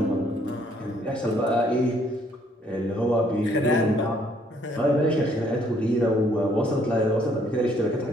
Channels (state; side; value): normal; both; correlation 0.65